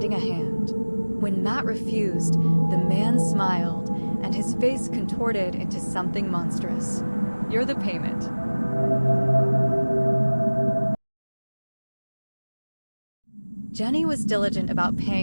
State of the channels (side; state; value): both; inverted; correlation -1.00